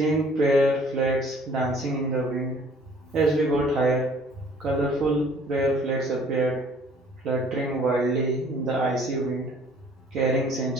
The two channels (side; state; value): both; normal; correlation 0.55